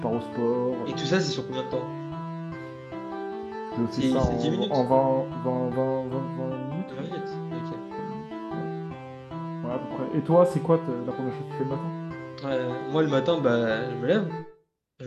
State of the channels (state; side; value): identical; both; correlation 1.00